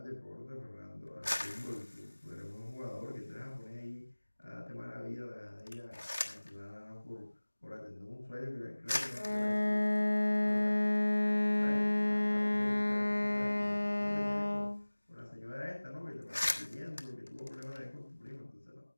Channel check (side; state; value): both; inverted; correlation -1.00